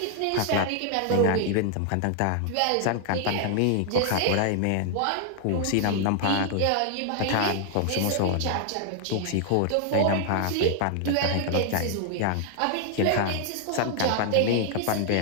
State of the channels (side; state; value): both; different; correlation 0.00